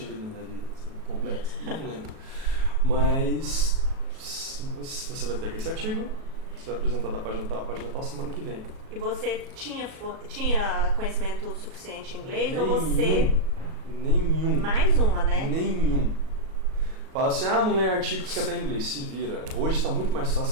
lido na minha vida? Assim, completo? Não lembro. Mas você vai pegar esse artigo, você vai apresentar da página tal, semana que vem. E você tinha conhecimento suficiente em inglês ou você... Nenhum. Mais uma, né? Nenhum. Fala assim, não lê artigos que até em inglês, se vira. Hoje está muito mais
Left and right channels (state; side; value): late; left; 37 ms